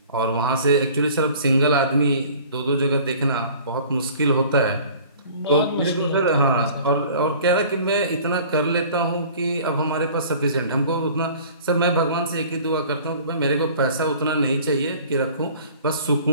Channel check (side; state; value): both; inverted; correlation -0.47